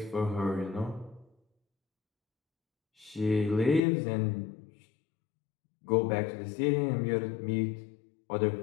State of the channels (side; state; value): right; drops out; at 3.8 s